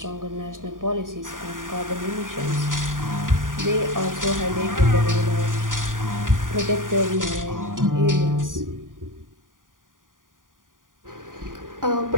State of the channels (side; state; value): left; late; 0.89 ms